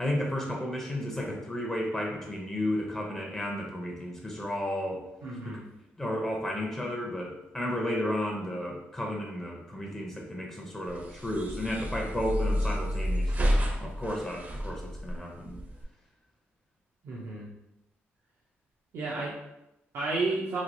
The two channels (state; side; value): normal; both; correlation 0.86